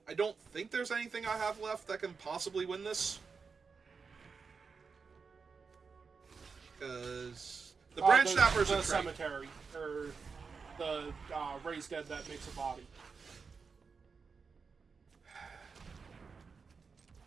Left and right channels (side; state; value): left; quieter; 5.2 dB